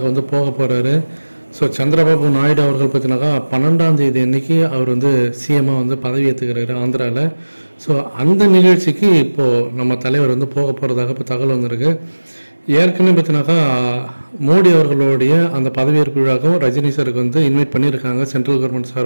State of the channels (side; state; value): both; inverted; correlation -1.00